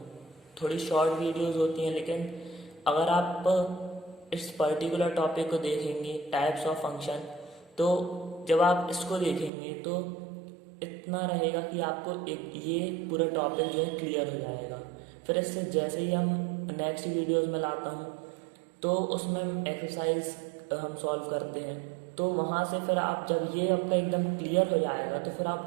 थोड़ी शॉर्ट वीडियोस होती हैं, लेकिन अगर आप इस पर्टिकुलर टॉपिक को देखेंगे टाइप्स ऑफ फंक्शन, तो जब आप इसको देखेंगे तो इतना रहेगा कि आपको एक ये पूरा टॉपिक जो है क्लियर हो जाएगा। फिर इससे जैसे ही हम नेक्स्ट वीडियोस में लाता हूँ तो उसमें एक्सरसाइज हम सॉल्व करते हैं, तो वहाँ से फिर आप जब ये आपका एकदम क्लियर हो जाएगा तो फिर आप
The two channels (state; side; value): drops out; left; at 9.5 s